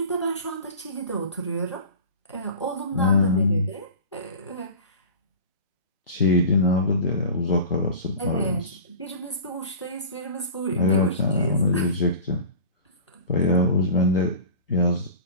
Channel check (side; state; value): both; inverted; correlation -0.36